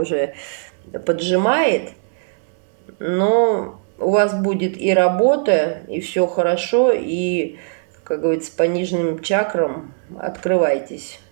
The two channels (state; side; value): silent; left; 66 dB below the other